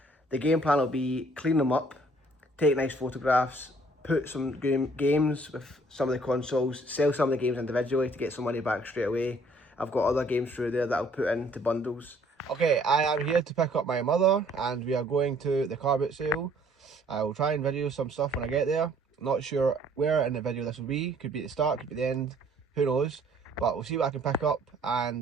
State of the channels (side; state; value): both; normal; correlation 0.60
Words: The game plan will be clean them up, take nice photographs, put some games with some of the consoles, sell some of the games individually to get some money back straight away. I've got other games through there that I'll put into bundles. Okay, I am here to pick up my mother, and we are going to the car boot sale. I will try and video some stuff when I get there. Not sure where in the video this will be. Could be at the start, could be the end, who knows. But we'll see what I can pick up,